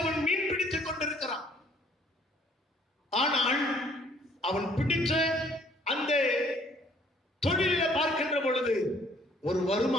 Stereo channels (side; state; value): both; normal; correlation 0.61